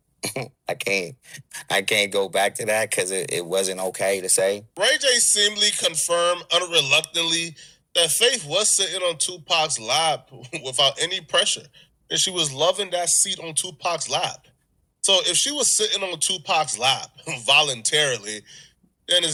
I can't go back to that because it wasn't okay to say. Ray J seemingly confirmed unreluctantly that Faith was sitting on Tupac's lap without any pressure, and she was loving that seat on Tupac's lap. So if she was sitting on Tupac's lap voluntarily, then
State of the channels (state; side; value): identical; both; correlation 1.00